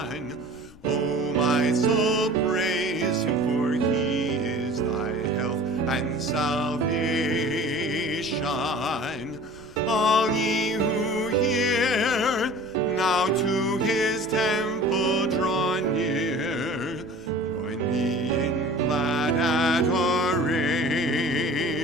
O my soul, praise Him, for He is thy health and salvation. All ye who hear, now to His temple draw near. Join me in glad adoration.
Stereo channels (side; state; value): left; noise; rumble, 22 dB below the sound